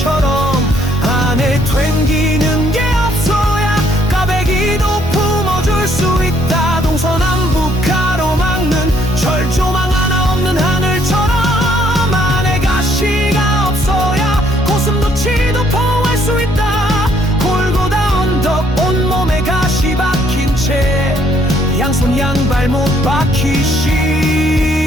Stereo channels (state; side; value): normal; both; correlation 0.67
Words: 안에 튕기는 게 없어야 까베기도 품어줄 수 있다. 동서남북 가로막는 철조망 하나 없는 하늘처럼 안에 가시가 없어야 고슴도치도 포할 수 있다. 골고다 언덕 온몸에 가시 박힌 채 양손 양발 못 박히신